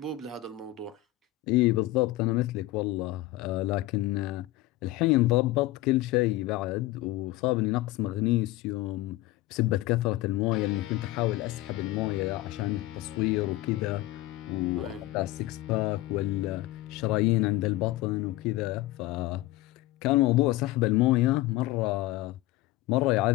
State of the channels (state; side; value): quieter; right; 17.1 dB